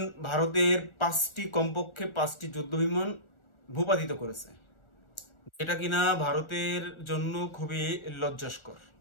ভারতের কমপক্ষে 5টি যুদ্ধ বিমান ভূপাতিত করেছে, যেটা কিনা ভারতের জন্য খুবই লজ্জাস্কর।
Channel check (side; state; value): right; late; 1.4 ms